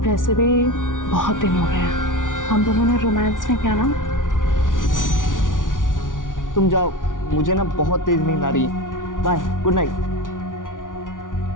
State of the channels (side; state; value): right; late; 0.88 ms